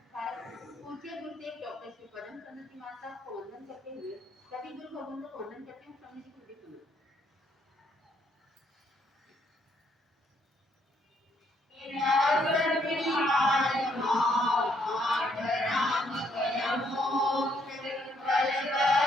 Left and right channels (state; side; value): normal; both; correlation 0.71